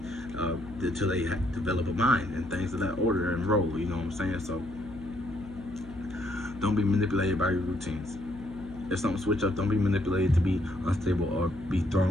until they develop a mind and things of that order and role. You know what I'm saying? So don't be manipulated by your routines. If something switch up, don't be manipulated to be unstable or be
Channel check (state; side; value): noise; left; hum, 16 dB below the sound